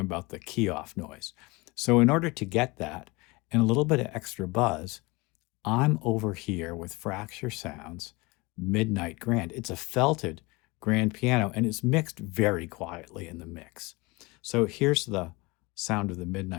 the key off noise. So in order to get that and a little bit of extra buzz, I'm over here with Fracture Sounds Midnight Grand. It's a felted grand piano and it's mixed very quietly in the mix. So here's the sound of the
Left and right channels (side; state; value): right; quieter; 24.4 dB